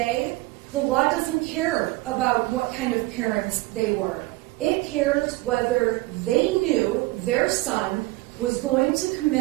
the law doesn't care about what kind of parents they were. It cares whether they knew their son was going to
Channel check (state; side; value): quieter; left; 20.9 dB